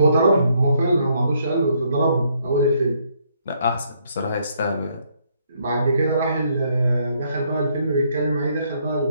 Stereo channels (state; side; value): inverted; both; correlation -0.71